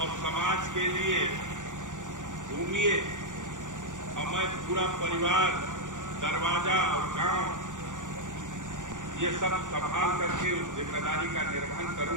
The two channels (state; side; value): late; left; 0.87 ms